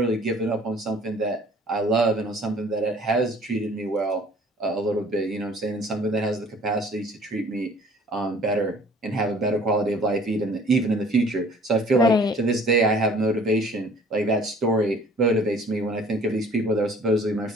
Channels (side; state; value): both; normal; correlation 0.53